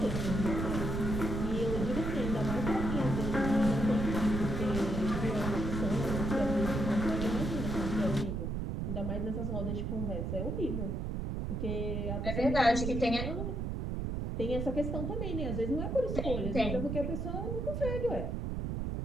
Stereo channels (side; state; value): right; noise; rumble, 2 dB below the sound